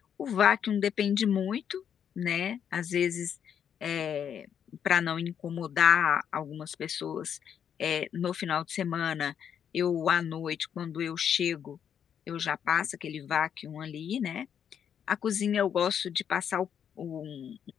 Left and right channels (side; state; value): right; quieter; 8.4 dB